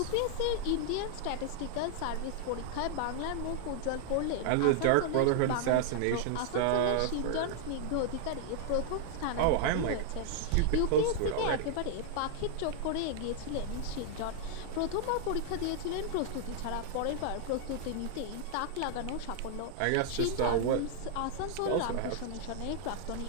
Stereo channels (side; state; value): both; different; correlation 0.00